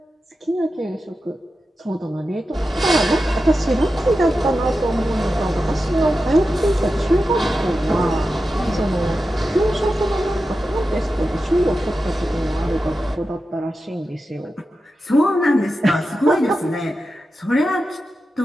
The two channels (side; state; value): both; normal; correlation 0.91